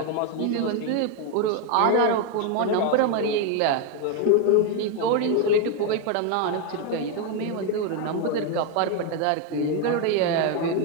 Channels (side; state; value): both; different; correlation 0.01